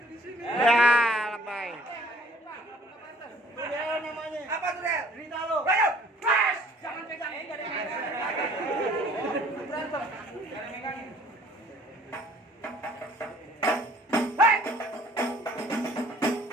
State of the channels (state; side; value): normal; both; correlation 0.56